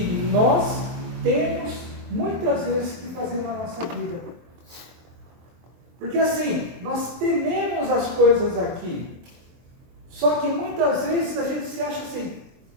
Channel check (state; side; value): late; left; 23 ms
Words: nós temos muitas vezes que fazer na nossa vida. Porque assim, nós tememos as coisas aqui. Só que muitas vezes a gente se acha assim,